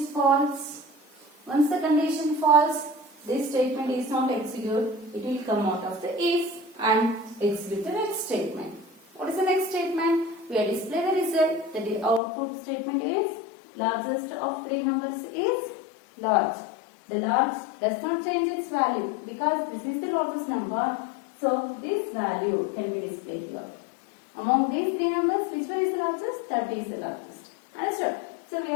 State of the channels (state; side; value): drops out; right; at 12.2 s